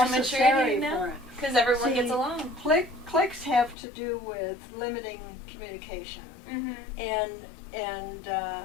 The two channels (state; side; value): drops out; right; at 3.8 s